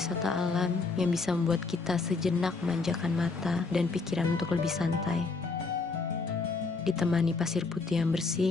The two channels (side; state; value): right; quieter; 4.1 dB